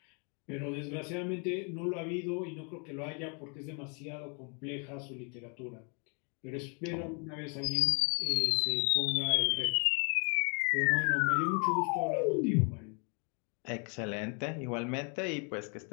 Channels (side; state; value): right; quieter; 36.8 dB